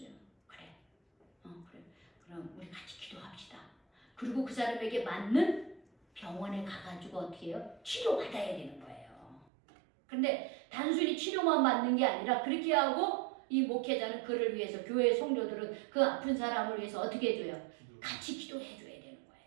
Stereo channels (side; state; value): left; drops out; at 9.5 s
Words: 그래. 그래. 그럼 우리 같이 기도합시다. 그리고 그 사람에게 맞는 병원에 가가지고 어떻게 해요? 치료받아야 되는 거예요. 근데 단순히 치료만 받는 게 아니라 그렇게 하고 이 목회자는 그를 위해서 교회 성도들은 그 아픈 사람을 위해서 어떻게 해줘요? 같이 기도해 줘야 되는